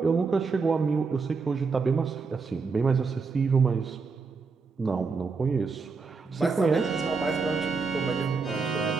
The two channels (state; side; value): quieter; left; 4.7 dB